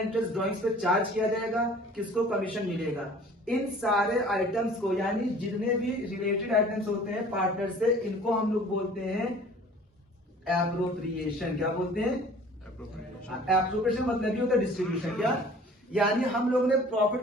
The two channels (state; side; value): normal; both; correlation 0.49